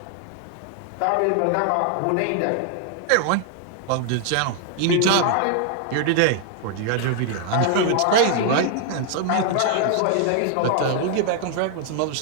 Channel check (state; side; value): different; both; correlation 0.00